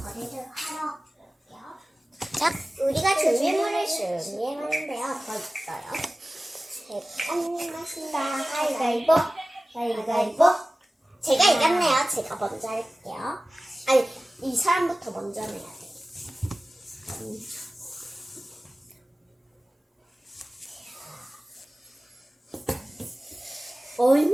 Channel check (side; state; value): both; normal; correlation 0.96